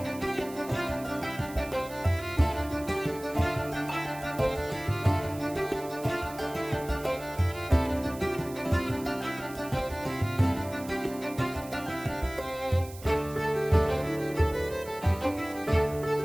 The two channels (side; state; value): right; noise; hiss, 18 dB below the sound